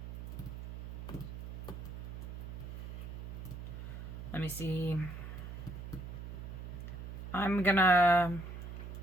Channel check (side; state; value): right; noise; hum, 8 dB below the sound